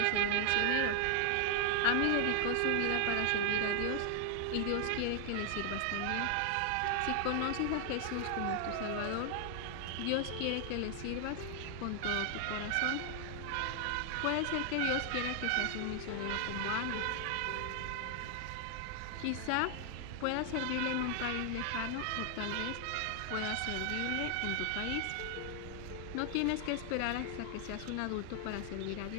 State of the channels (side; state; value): both; different; correlation 0.00